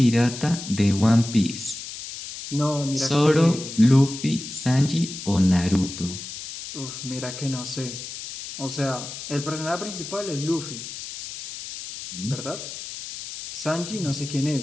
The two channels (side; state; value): left; noise; hiss, 10 dB below the sound